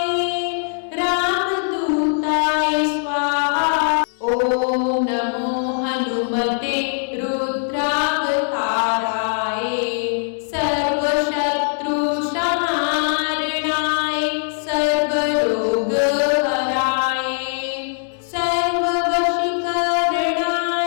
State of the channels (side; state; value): right; silent; 64 dB below the other